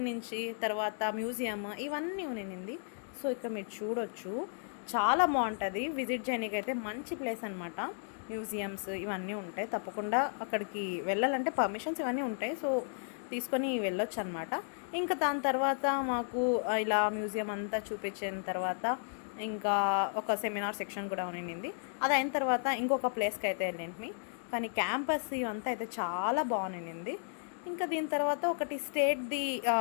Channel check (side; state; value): right; silent; digital silence